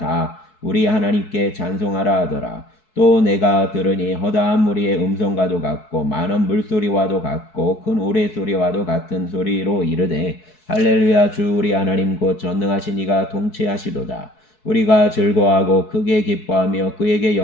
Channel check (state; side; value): late; right; 4.6 ms